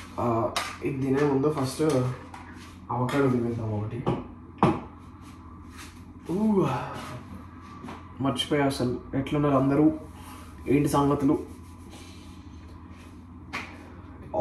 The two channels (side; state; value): both; identical; correlation 1.00